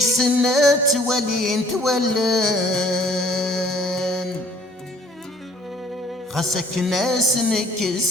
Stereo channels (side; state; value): both; normal; correlation 0.57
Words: تولان خاصك ناس